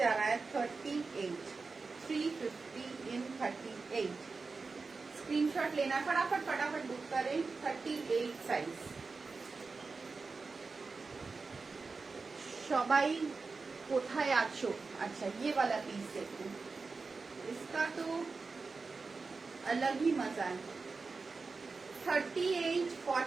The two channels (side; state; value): left; quieter; 4.2 dB